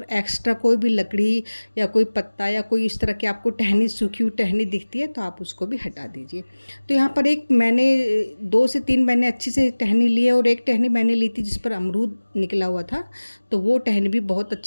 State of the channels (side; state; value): both; inverted; correlation -1.00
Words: एक्स्ट्रा कोई भी लकड़ी या कोई पत्ता या कोई इस तरह की आपको टहनी, सूखी हुई टहनी दिखती है, तो आप उसको भी हटा दीजिए। तो यहाँ पर एक मैंने 2 से 3 मैंने अच्छी से टहनी ली है, और एक टहनी मैंने ली थी जिस पर अमरूद निकला हुआ था। तो वो टहनी भी बहुत